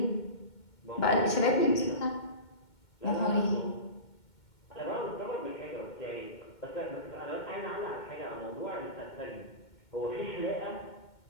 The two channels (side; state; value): right; late; 2.2 ms